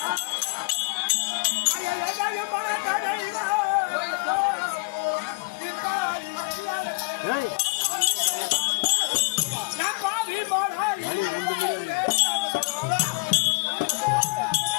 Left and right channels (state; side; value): quieter; right; 28.5 dB